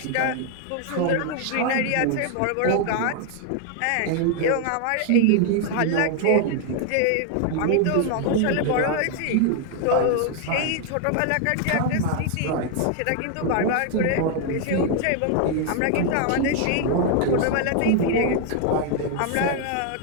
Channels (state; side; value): different; both; correlation 0.00